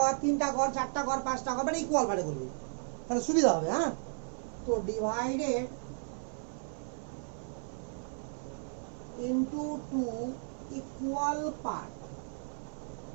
3টা ঘর, 4টা ঘর, 5টা ঘর, মানে ইকুয়াল পার্টে করবি, তাহলে সুবিধা হবে। হ্যাঁ, তো ডিভাইডেড ইনটু 2 ইকুয়াল পার্ট।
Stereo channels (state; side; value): silent; left; 55 dB below the other